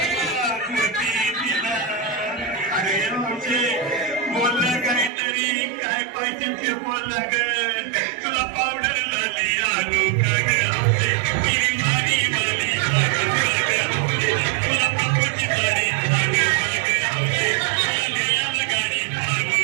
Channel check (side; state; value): left; drops out; at 5.1 s